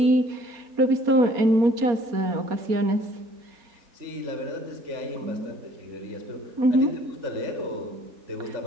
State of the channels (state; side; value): late; left; 4.3 ms